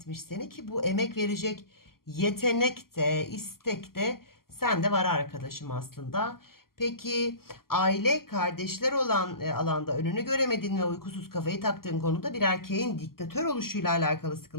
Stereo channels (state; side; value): late; right; 0.92 ms